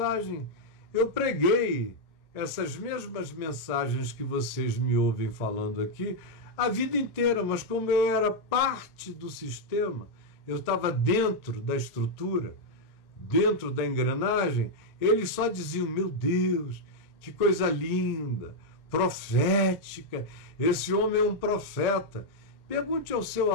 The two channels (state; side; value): late; right; 1.8 ms